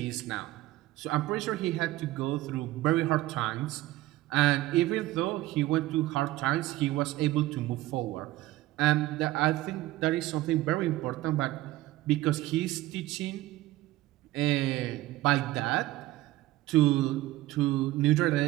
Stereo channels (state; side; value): quieter; left; 17.1 dB